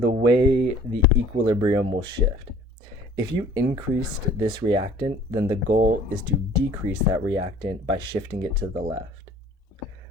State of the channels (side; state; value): both; normal; correlation 0.51